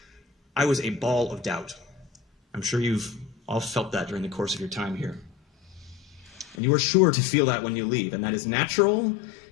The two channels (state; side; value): drops out; right; at 6.6 s